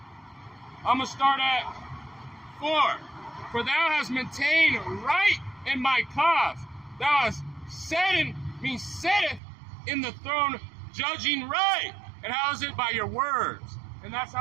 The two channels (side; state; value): left; drops out; at 9.4 s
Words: I'm going to start at 4. For thou hast maintained right in my cause. Thou hast setteth in the throne, judging right. And how is it? By your words. And that's